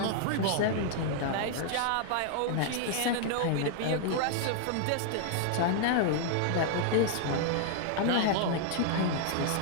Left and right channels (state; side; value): different; both; correlation -0.01